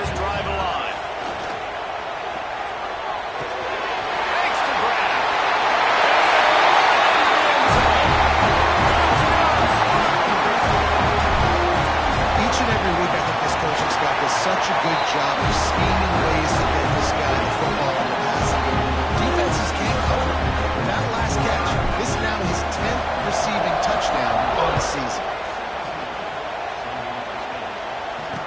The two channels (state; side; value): identical; both; correlation 1.00